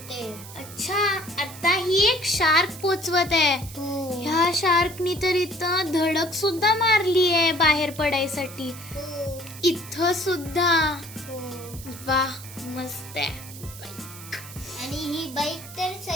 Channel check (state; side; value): noise; right; hiss, 15 dB below the sound